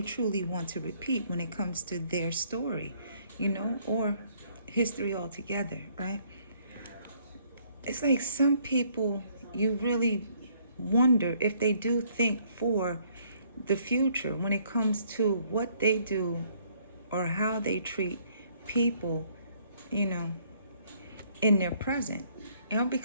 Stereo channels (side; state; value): both; inverted; correlation -0.65